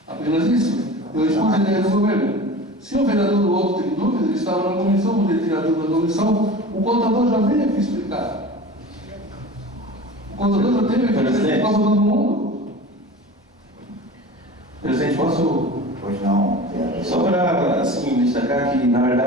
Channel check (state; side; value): normal; both; correlation 0.36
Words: Apenas isso. Eu expus a ideia do governo. Se o vereador do outro tem dúvidas, ele estava na comissão, poderia tirar dúvida da comissão, o contador já veio aqui explicar. O contador já teve aqui explicar para todo mundo. Presidente, posso. Pois não, vereador. Só para assim, destacar que, na